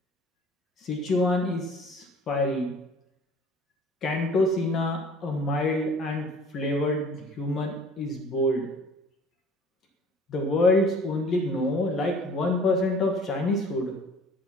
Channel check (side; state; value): both; normal; correlation 0.50